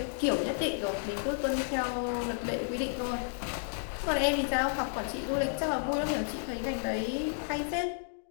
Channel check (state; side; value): silent; right; digital silence